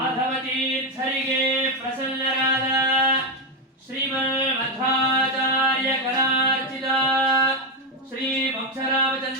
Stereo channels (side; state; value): both; normal; correlation 0.07